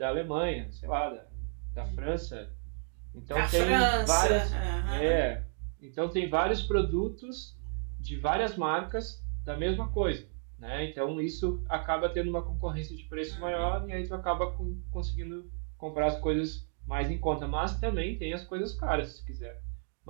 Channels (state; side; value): silent; left; 56 dB below the other